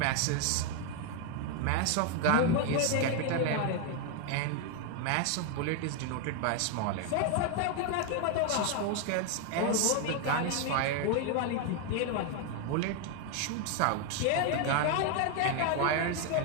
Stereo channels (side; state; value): both; different; correlation 0.01